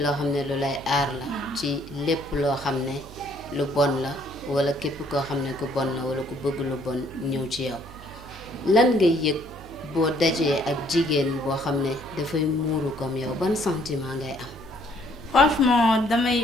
loo xam ne lu lay aar la ci lépp loo xam ne lu bon la wala képp koo xam ne ku bon la wala ku bëgg lu bon ñëw ci yow lan ngay yëg boo dajee ak jigéen boo xam ne dafay muuru comme yow ban sentiment ngay am. franchement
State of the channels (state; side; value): noise; right; hum, 17 dB below the sound